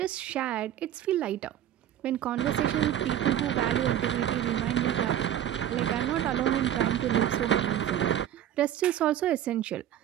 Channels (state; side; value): quieter; left; 11.1 dB